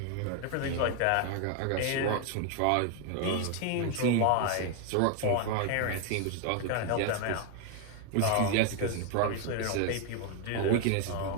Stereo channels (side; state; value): both; different; correlation 0.01